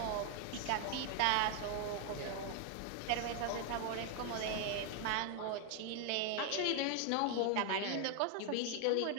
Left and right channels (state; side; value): different; both; correlation 0.00